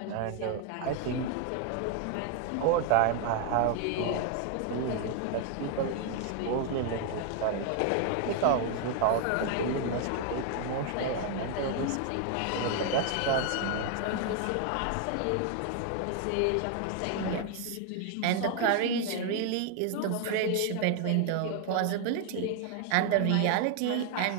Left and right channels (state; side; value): different; both; correlation 0.00